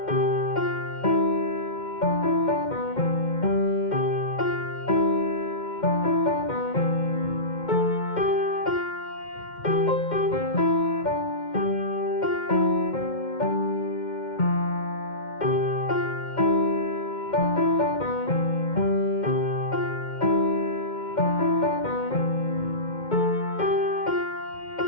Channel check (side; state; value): right; late; 2.1 ms